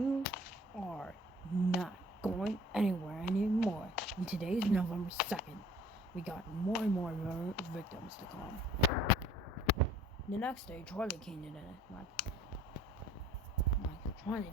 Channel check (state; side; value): normal; both; correlation 0.53